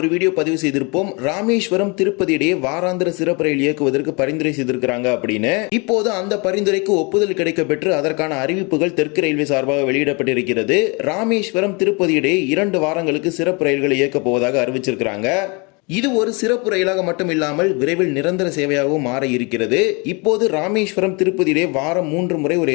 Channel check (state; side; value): quieter; right; 30.2 dB